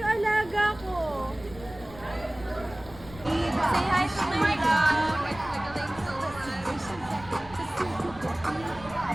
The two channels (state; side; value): noise; left; rumble, 17 dB below the sound